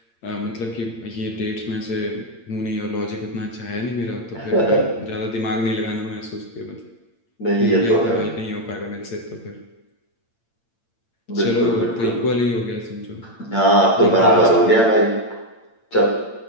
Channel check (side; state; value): right; late; 8.8 ms